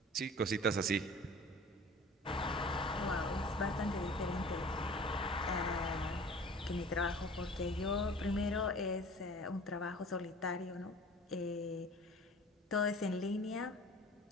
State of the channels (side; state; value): both; normal; correlation 0.44